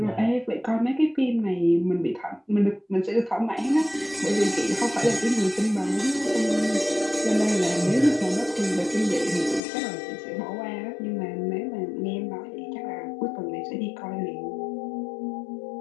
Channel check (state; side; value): drops out; right; at 9.6 s